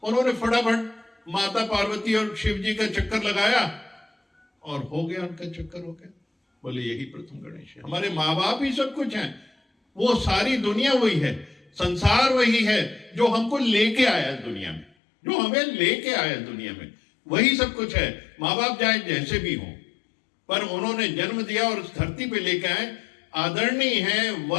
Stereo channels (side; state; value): right; drops out; at 14.9 s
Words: उन्होंने फटाफट माता पार्वती और शिव जी का चक्कर लगाया, और हो गया उनका चक्कर, हो गया। बोले यही प्रथम गणेश है। हमारे माँ बाप ही सब कुछ हैं, वो सारी दुनिया वही है, संसार वही है जो हमको लेके आया इस दुनिया में, जो हमें लेके आया इस दुनिया में, वही सब कुछ है। माँ बाप चाहे जैसे भी हो, पर उन्होंने जन्म दिया और इस धरती पे लेके आए। आदरणीय है,